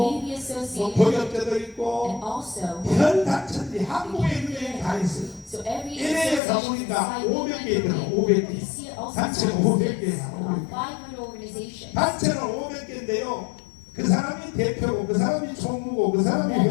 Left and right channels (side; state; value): right; drops out; at 6.4 s